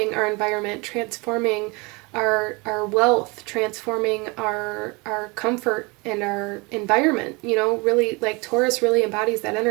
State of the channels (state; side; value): quieter; left; 27.7 dB